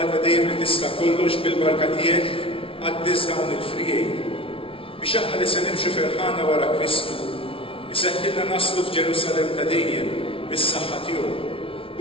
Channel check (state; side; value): late; right; 0.26 ms